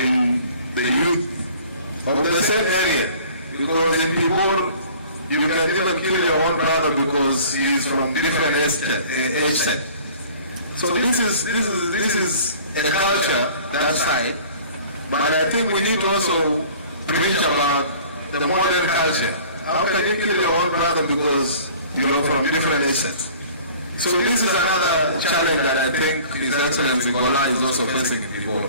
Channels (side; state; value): both; inverted; correlation -0.49